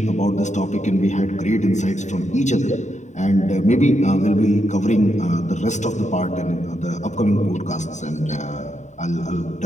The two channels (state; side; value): late; right; 0.34 ms